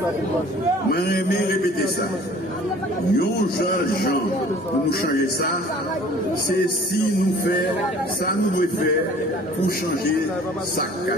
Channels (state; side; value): normal; both; correlation 0.50